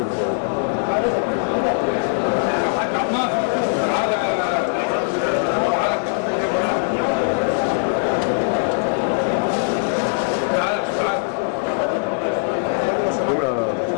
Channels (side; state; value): right; silent; 65 dB below the other